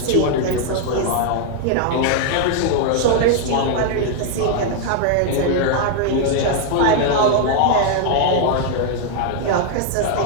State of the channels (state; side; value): different; both; correlation 0.00